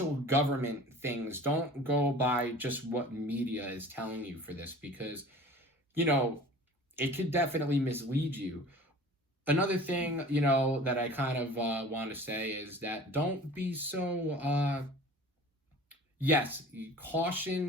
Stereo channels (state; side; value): normal; both; correlation 0.42